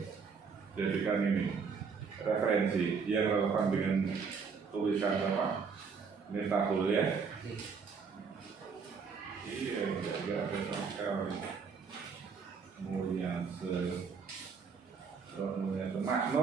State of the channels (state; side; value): quieter; left; 5.6 dB